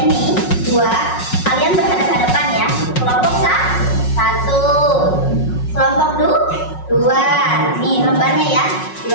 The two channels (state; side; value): late; right; 5.5 ms